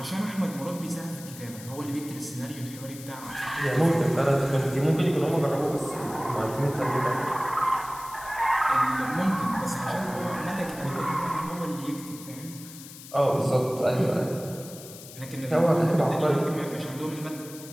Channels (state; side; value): noise; left; hiss, 16 dB below the sound